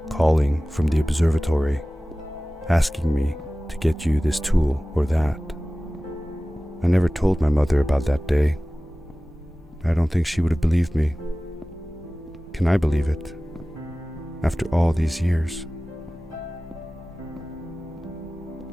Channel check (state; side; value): normal; both; correlation 0.97